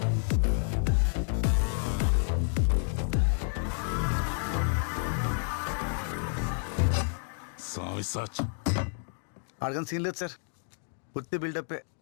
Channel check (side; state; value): right; silent; 58 dB below the other